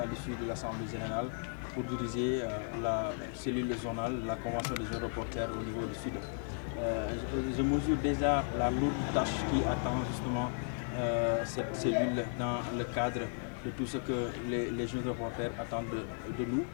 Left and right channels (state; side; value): silent; right; 54 dB below the other